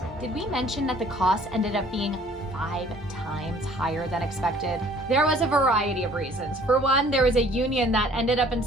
Did we mention that the cost ended up being 5 times higher than expected? There was a variety of reasons. For one, there was a union that ended up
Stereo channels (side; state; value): both; normal; correlation 0.55